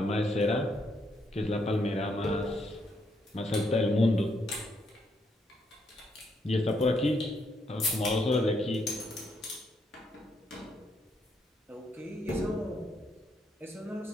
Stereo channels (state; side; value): normal; both; correlation 0.76